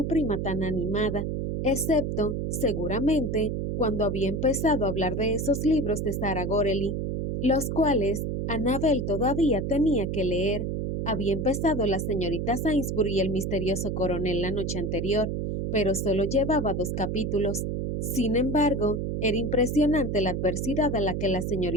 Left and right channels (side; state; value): right; noise; hum, 2 dB below the sound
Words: prima tan animada, excepto, seguramente, cuando había empezado a hablar de esos libros de Sarah Gorely, los cuales Annabel todavía tenía que leer. Había empezado la señorita Sainsbury y el misterioso coronel la noche anterior, pero solo llevaba 2 capítulos. Sin embargo, era impresionante la adversidad a la que la